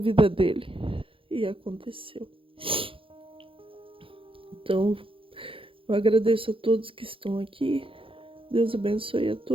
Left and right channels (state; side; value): late; left; 0.26 ms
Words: dele. E aconteceu. Então, eu agradeço a todos que estão aqui. Deus abençoe a